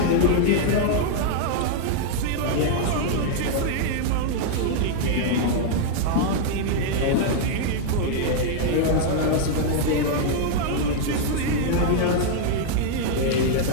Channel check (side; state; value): both; different; correlation 0.00